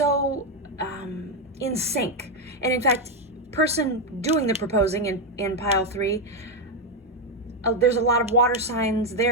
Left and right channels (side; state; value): both; normal; correlation 0.05